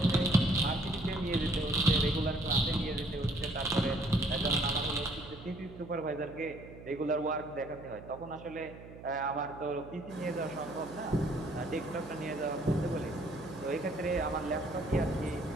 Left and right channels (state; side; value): noise; right; hum, 16 dB below the sound